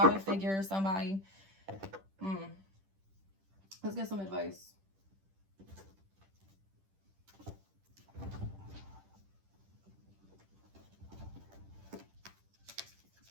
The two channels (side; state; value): left; late; 10 ms